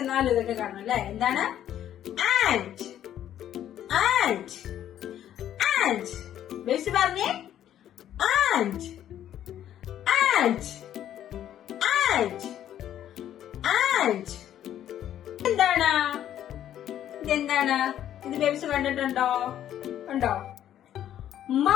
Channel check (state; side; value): quieter; right; 11.1 dB